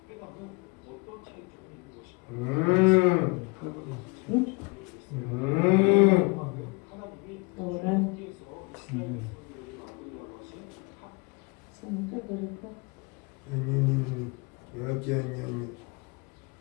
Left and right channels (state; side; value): quieter; right; 29.4 dB